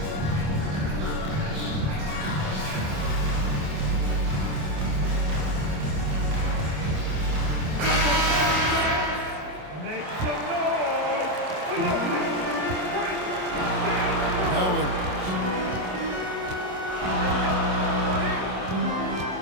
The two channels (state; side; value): late; left; 27 ms